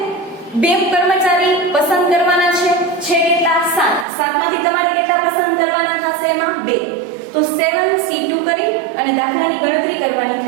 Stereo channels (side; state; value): left; drops out; at 4.0 s